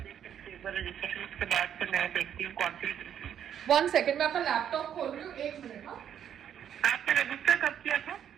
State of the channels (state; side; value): quieter; left; 9.4 dB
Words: सकती हूँ। रजिस्ट्रेशन के बाद फिर मैं देखती हूँ कौन सी। 1 सेकेंड, मैं अपना लैपटॉप खोल रही हूँ, एक मिनट। हाँ, आपने रजिस्टर कब किया था?